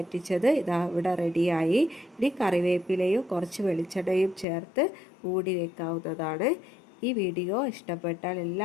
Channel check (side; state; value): right; drops out; at 4.5 s